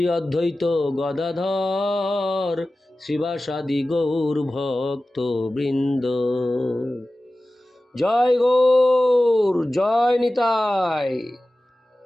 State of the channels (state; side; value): normal; both; correlation 0.96